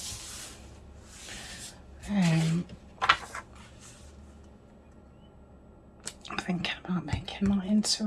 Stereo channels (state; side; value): identical; both; correlation 1.00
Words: I'm thinking about making that into